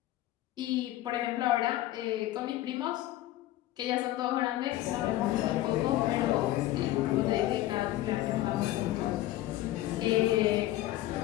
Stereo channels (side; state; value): right; quieter; 15.3 dB